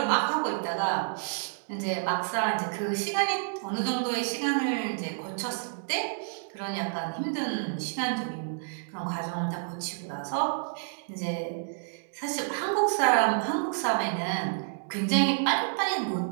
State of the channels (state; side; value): silent; left; digital silence